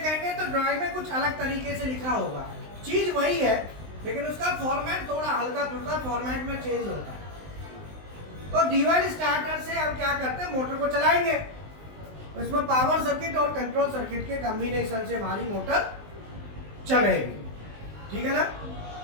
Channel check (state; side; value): late; left; 19 ms